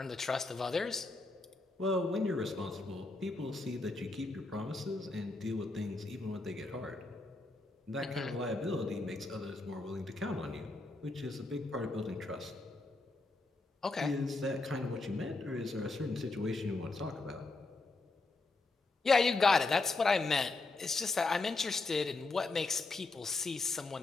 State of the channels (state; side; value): quieter; right; 3.4 dB